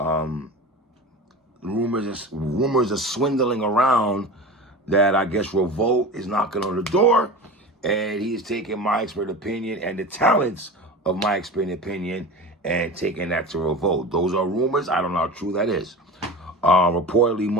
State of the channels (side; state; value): both; normal; correlation 0.31